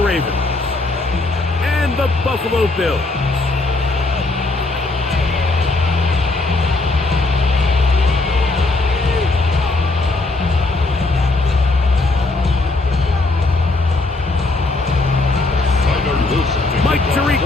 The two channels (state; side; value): quieter; right; 3.2 dB